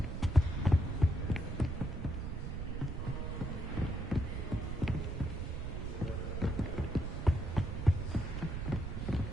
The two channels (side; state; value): right; noise; rumble, 3 dB below the sound